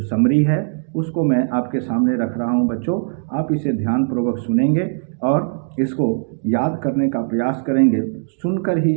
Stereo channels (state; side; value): silent; left; digital silence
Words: समरी है, उसको मैं आपके सामने रख रहा हूं। बच्चों, आप इसे ध्यानपूर्वक सुनेंगे और इसको याद करने का प्रयास करेंगे। सुनकर ही